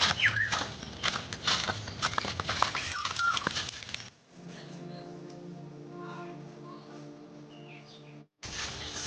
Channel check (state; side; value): identical; both; correlation 1.00